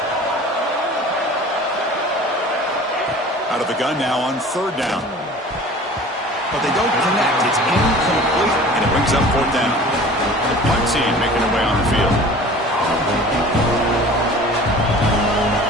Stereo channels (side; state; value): both; normal; correlation 0.43